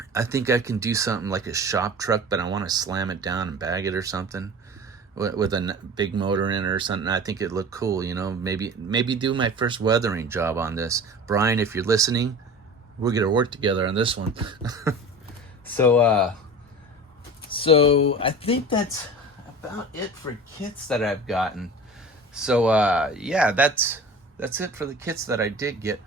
think I can do something like a shop truck, but I want to slam it down and bag it or something with a big motor in it or something. I think it looked cool, you know. Maybe do my first weathering job on this. Brian, if you're listening, we're gonna work together on this one. So I think that's about it for kits that I've gotten. So yeah, that's it for the kits that I did get.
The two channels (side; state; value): both; normal; correlation 0.36